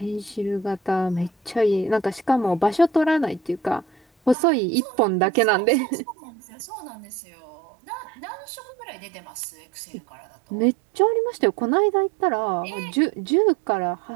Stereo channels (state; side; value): drops out; left; at 4.4 s